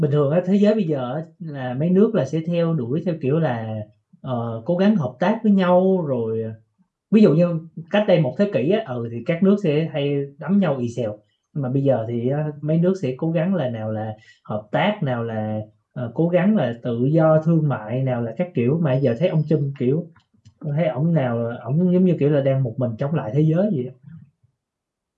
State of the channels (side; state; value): both; identical; correlation 1.00